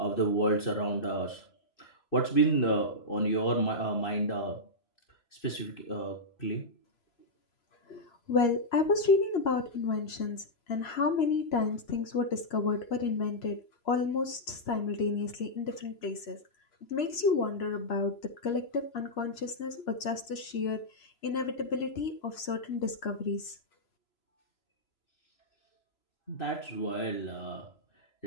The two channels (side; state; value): right; late; 3.0 ms